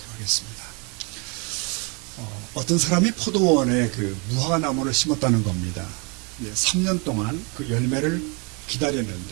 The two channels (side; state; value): left; quieter; 32.5 dB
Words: 하겠습니다. 어떤 사람이 포도원에 그 무화과 나무를 심었다는 겁니다. 3년 동안 그 열매를